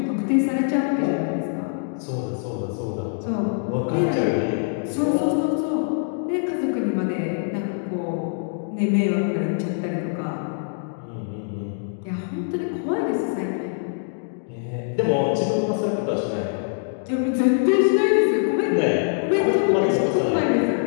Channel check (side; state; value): right; silent; digital silence